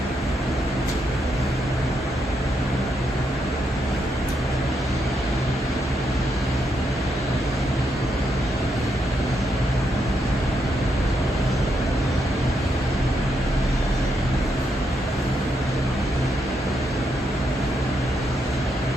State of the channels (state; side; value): normal; both; correlation 0.80